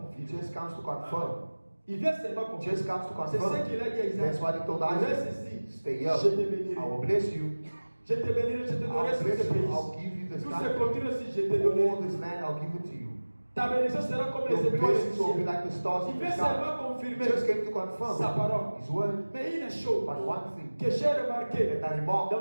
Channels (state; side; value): inverted; both; correlation -1.00